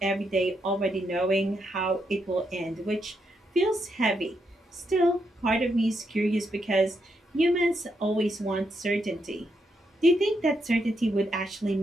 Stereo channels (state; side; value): normal; both; correlation 0.80